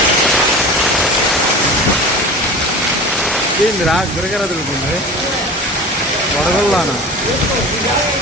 ఏందిరా గిరగిర తిరుగుతుంది వడగల్లానా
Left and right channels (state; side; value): normal; both; correlation 0.35